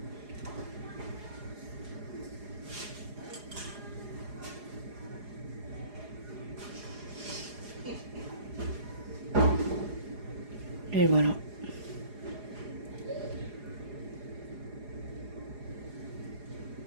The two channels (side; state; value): left; late; 4.8 ms